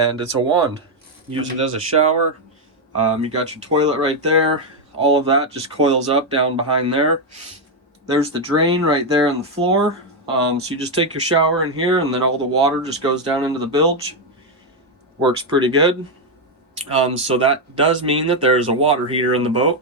it's a wand. Use it as a shower. You got your toilet right there. All of that just coils up down behind there. There's the drain right there on the floor. So you just take your shower in here and then all the water just goes down into the bilge. Works pretty good. So that does mean that there's a water heater in the boat.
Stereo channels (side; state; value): both; normal; correlation 0.03